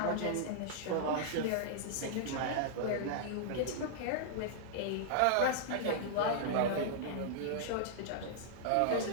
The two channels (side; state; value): both; different; correlation -0.01